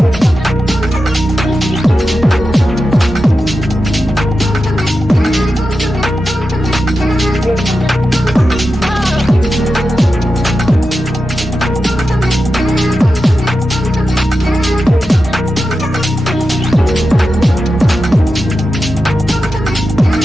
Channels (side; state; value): both; normal; correlation 0.91